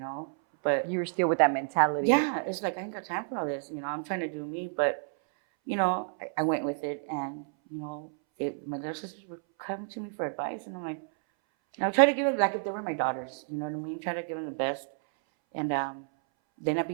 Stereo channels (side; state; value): left; silent; 58 dB below the other